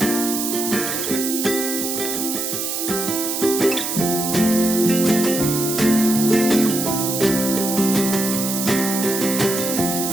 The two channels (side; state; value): right; noise; hiss, 3 dB below the sound